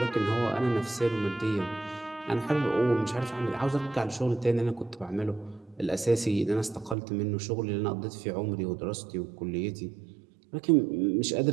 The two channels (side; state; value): left; drops out; at 7.0 s